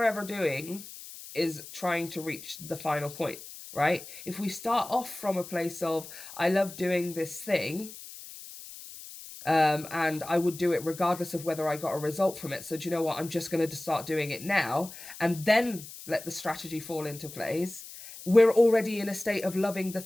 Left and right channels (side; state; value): left; noise; hiss, 14 dB below the sound